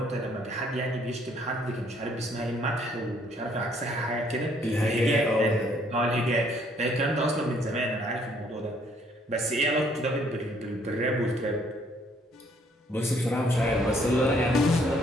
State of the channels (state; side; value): normal; both; correlation 0.65